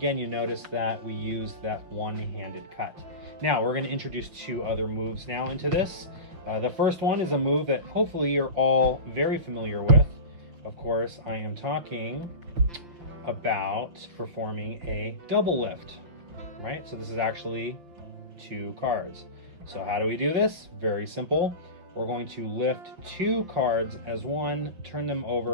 you notice that we used that one-handed cut. Now we're going to introduce 2 other moves now into this. The first one is a move that hopefully you're all very familiar with. Of course, I am talking about performing a double lift, right? So this is actually 2 cards. So how do we do this? Very simple. We're going to lift 2 cards as 1, turn them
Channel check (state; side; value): late; left; 5.7 ms